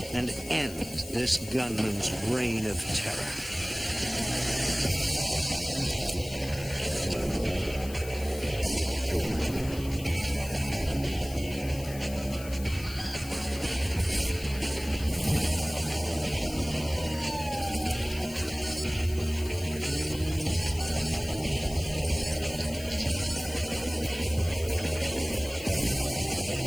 and end this gunman's reign of terror.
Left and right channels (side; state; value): left; noise; hiss, 15 dB below the sound